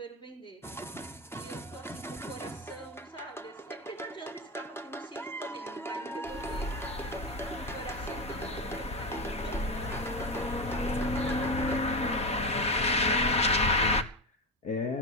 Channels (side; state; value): both; normal; correlation 0.17